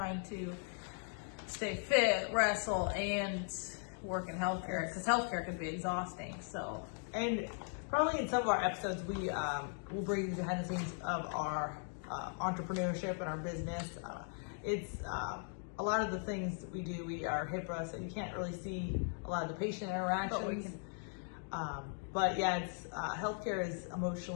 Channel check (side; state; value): right; silent; 52 dB below the other